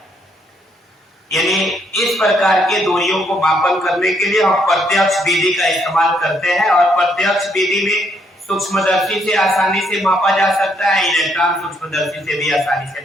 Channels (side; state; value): both; normal; correlation 0.72